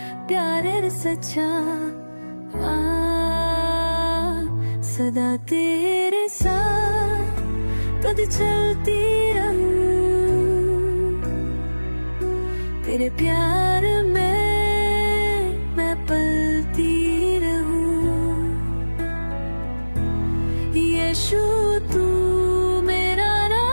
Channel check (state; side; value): inverted; both; correlation -1.00